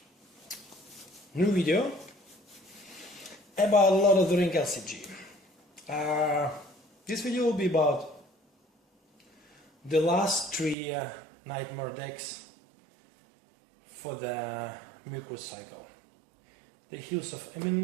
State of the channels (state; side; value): drops out; left; at 10.8 s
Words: new video about LOTR LCG. This video will be about the last three Nightmare decks for the Mirkwood cycle. The Hills of Emyn